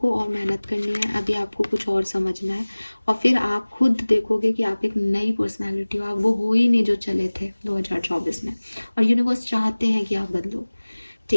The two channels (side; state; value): both; inverted; correlation -1.00